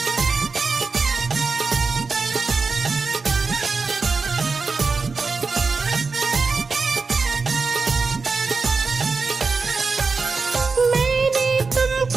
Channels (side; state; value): left; quieter; 4.5 dB